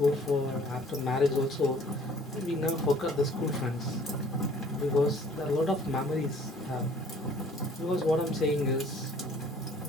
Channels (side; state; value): both; normal; correlation 0.55